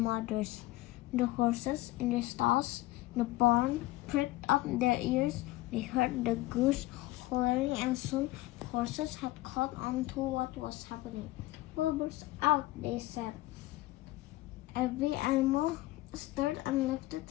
The horses in their stalls in the barn pricked up their ears. They heard the goose hollering, and soon the horses had caught on to what was happening. Wilbur's out, they said. Every animal stirred and lifted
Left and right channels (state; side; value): quieter; right; 18.5 dB